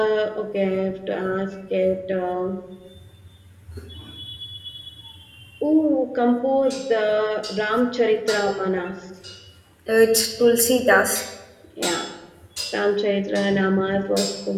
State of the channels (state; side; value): identical; both; correlation 1.00